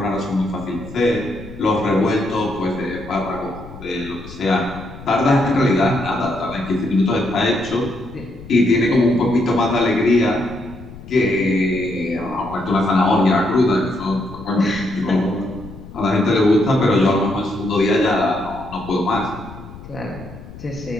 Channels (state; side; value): noise; left; rumble, 16 dB below the sound